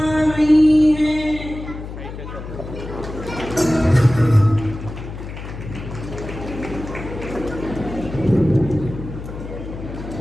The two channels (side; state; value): left; noise; hum, 10 dB below the sound